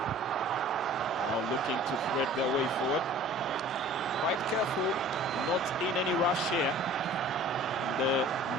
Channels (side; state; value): both; normal; correlation 0.47